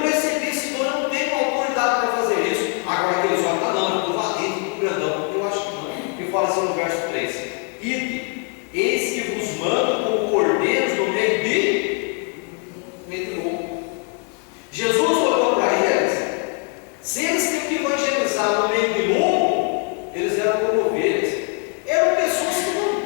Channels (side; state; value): right; quieter; 35.1 dB